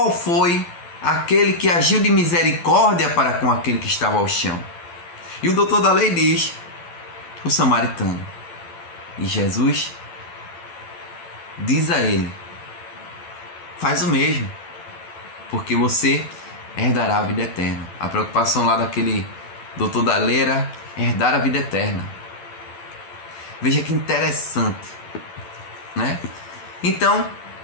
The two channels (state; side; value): late; right; 12 ms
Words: foi aquele que agiu de misericórdia para com aquele que estava ao chão? E o doutor da lei diz: o samaritano. E Jesus diz a ele: faz o mesmo, porque você herdará a vida eterna. A preocupação lá daquele doutor da Leira, herdar a vida eterna. Veja que interessante, né? Então,